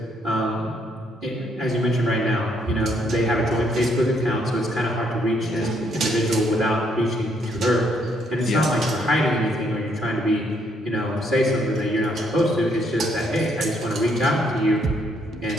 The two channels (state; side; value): normal; both; correlation 0.71